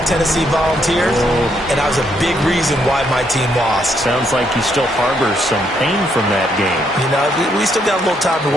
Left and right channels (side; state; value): both; normal; correlation 0.74